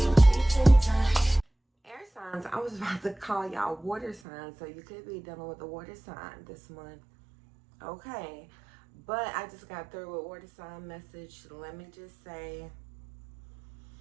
air signs. I was about to call y'all water signs, so you could be dealing with a water sign this month. Okay, but I just got through with water sign message. Let me just say,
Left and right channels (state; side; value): drops out; left; at 4.2 s